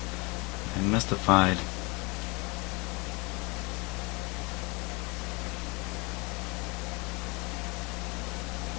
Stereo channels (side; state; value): right; quieter; 27.2 dB